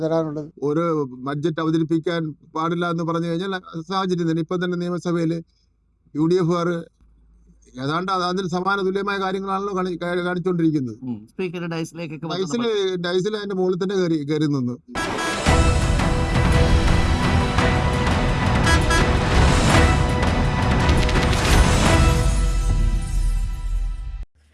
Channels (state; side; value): identical; both; correlation 1.00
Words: തരാനുള്ളത്. ഒരു ബഡ്ജറ്റ് അവതരിപ്പിക്കാൻ പാടില്ല എന്ന് പറഞ്ഞു കഴിഞ്ഞാൽ സാഹചര്യം തന്നെ. ഇപ്പം തന്നെ നിയമസഭയിൽ UDF ഏതാണ്ട് അതിന് സമാന തുല്യമായ കാര്യങ്ങളാണല്ലോ കാണിച്ചുകൊണ്ടിരിക്കുന്നത്. ഡൈസിൽ അതിന്റെ മുകളിൽ തന്നെ കയറി നിന്നു.